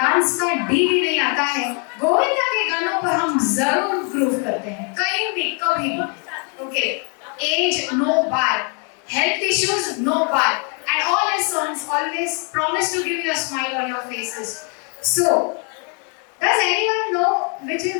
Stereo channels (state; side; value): quieter; right; 38.8 dB